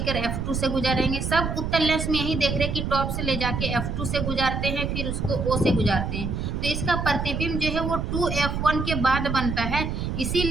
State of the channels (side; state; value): right; noise; rumble, 2 dB below the sound